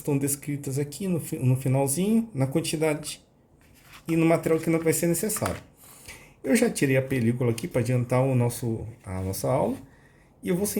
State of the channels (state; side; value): identical; both; correlation 1.00